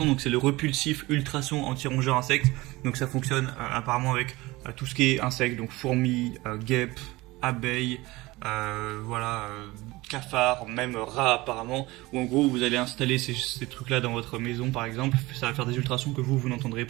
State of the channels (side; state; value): left; quieter; 20.7 dB